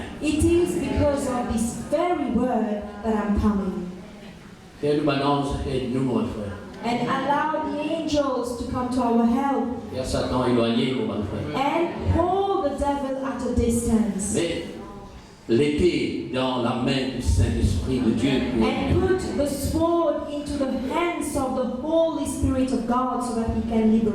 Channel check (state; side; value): identical; both; correlation 1.00